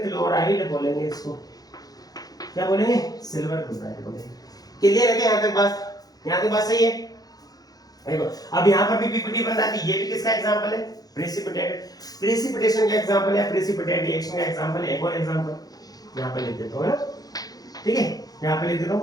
क्लोराइड बोलेंगे इसको। क्या बोलेंगे, सिल्वर क्लोराइड बोलेंगे। क्लियर है क्या, यहाँ तक बात, यहाँ तक बात सही है। देखो अब यहाँ पर भी पीपीटी बन रहा है, ये भी किसका एग्जांपल है, प्रेसिपिटेट, प्रेसिपिटेशन का एग्जांपल है, प्रेसिपिटेट रिएक्शन का एग्जांपल है। एक और एग्जांपल यहाँ पे लिख देता हूँ, है ना, ठीक है। यहाँ पे लिख देता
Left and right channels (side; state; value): right; late; 0.18 ms